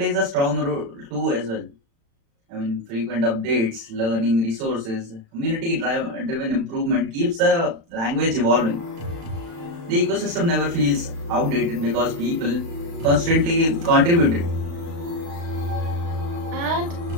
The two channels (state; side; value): late; left; 35 ms